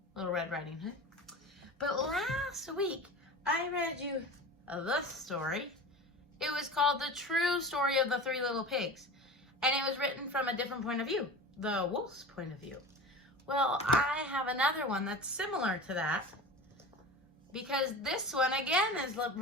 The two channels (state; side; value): normal; both; correlation 0.33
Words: Little Red Riding Hood. But last week I read you this story. It was called The True Story of the Three Little Pigs. And it was written from a different point of view, the wolf's point of view. Well, I have another one that's similar to that, because this one again is